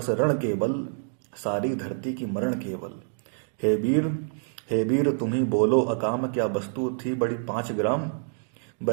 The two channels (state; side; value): silent; left; digital silence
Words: रण केवल, सारी धरती की मरण केवल। हे वीर, हे वीर तुम ही बोलो अकाम, क्या वस्तु थी बड़ी 5 ग्राम।